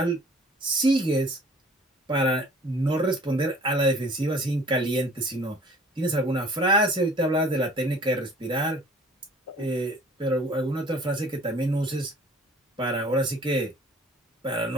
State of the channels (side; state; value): both; normal; correlation 0.51